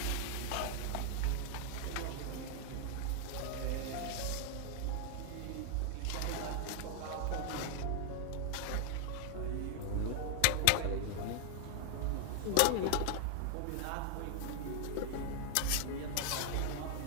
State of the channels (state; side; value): different; both; correlation 0.00